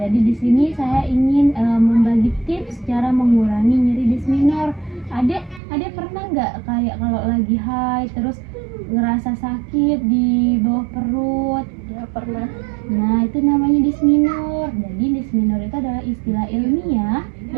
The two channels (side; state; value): left; drops out; at 5.6 s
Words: jadi di sini saya ingin membagi tips cara mengurangi nyeri disc minor. Adek pernah nggak kayak kalau lagi haid terus ngerasa sakit di bawah perut? Ya, pernah. Nah, itu namanya disc minor. Jadi disc minor itu adalah istilah ilmiah